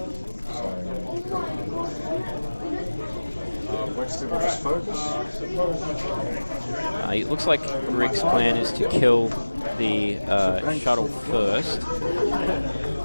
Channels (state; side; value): inverted; both; correlation -1.00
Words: It looks like Rick's plan is to kill the shuttle first